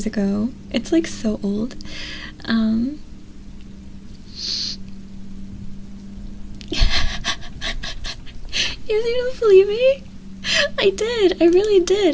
ago. It's, like, so old. You don't believe me? I did. I really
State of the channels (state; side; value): identical; both; correlation 1.00